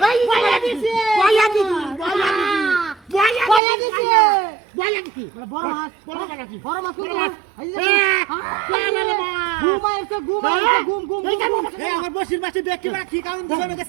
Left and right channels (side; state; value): left; drops out; at 3.6 s